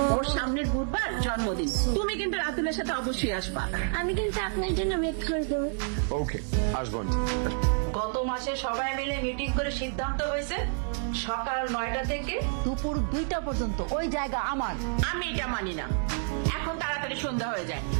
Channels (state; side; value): silent; left; 59 dB below the other